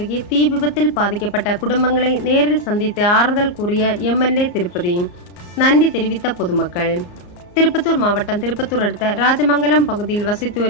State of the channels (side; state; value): right; late; 34 ms